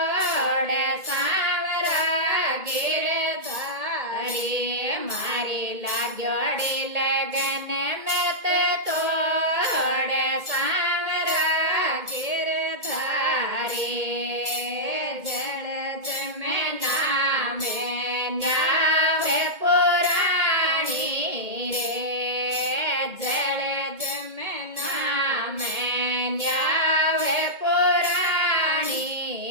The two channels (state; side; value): late; left; 2.2 ms